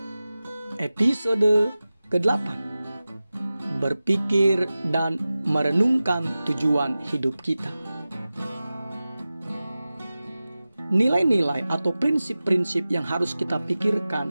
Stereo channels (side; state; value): both; inverted; correlation -0.96